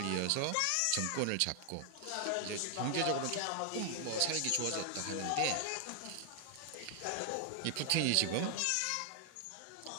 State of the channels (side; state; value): both; different; correlation 0.00